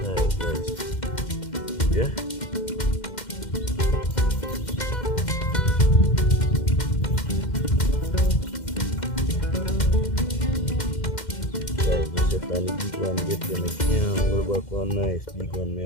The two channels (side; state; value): right; late; 2.1 ms